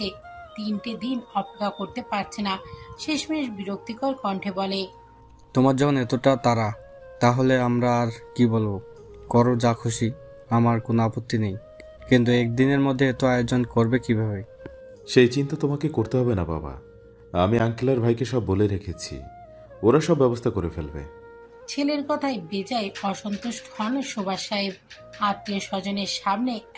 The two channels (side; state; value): both; identical; correlation 1.00